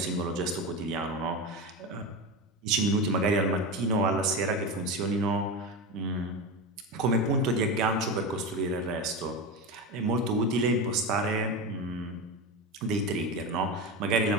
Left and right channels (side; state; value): both; normal; correlation 0.20